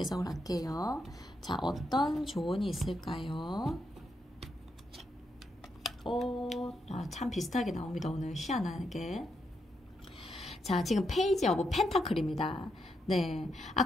할게요. 자, 어떤 조언이 있을까요? 참 비슷하게 나옵니다. 오늘 희한하게. 자, 지금 페이지 오브 펜타클입니다. 네,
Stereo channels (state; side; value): normal; both; correlation 0.81